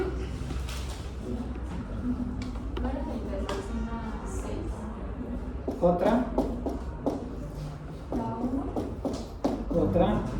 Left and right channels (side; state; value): both; identical; correlation 1.00